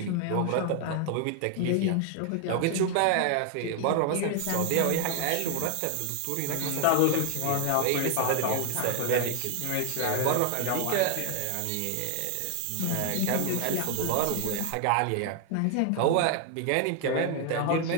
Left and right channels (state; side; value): different; both; correlation 0.01